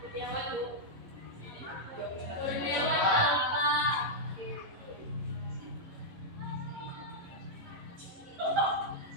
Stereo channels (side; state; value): left; late; 11 ms